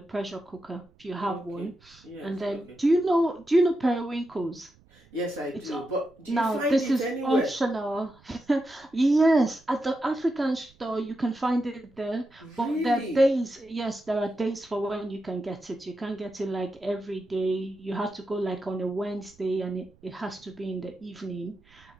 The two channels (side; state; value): right; noise; rumble, 29 dB below the sound